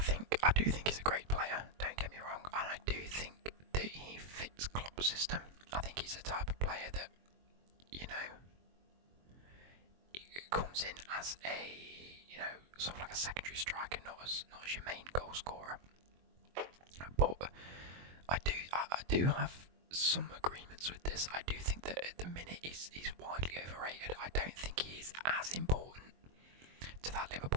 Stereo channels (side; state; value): left; late; 22 ms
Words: do think he's a great player, don't get me wrong, and I do think that he fits Klopp's system. I think he's the type of player that, comes in as a, sort of like a secondary striker, not as your main goal scorer. But I do have some agreements with this. I do think that at the minute he's widely overrated. I don't think he is as important to that